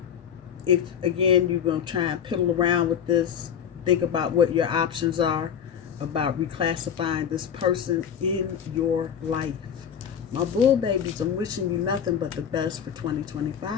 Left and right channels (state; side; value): quieter; right; 8.2 dB